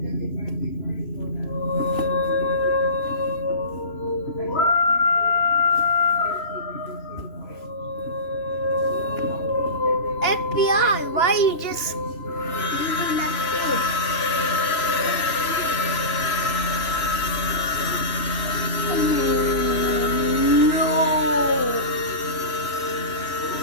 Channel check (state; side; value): late; right; 3.0 ms